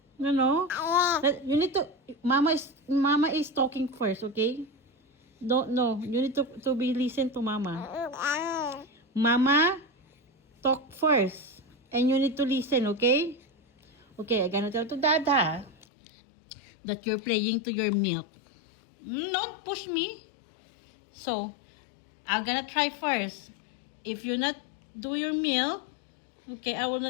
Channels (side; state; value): right; drops out; at 15.9 s